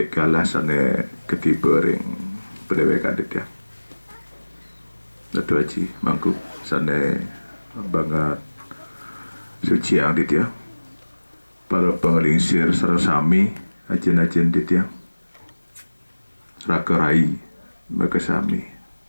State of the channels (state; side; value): inverted; both; correlation -1.00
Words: kalah sane ketiba ring pendewekan dit ya. Datu Haji mangku sane banget suci yang dit ya. Para pengelingsir sarasami ajen-ajen dit ya. Rakerai makasami